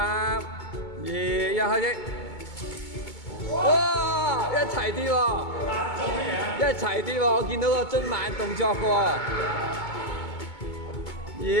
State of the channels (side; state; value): right; late; 2.2 ms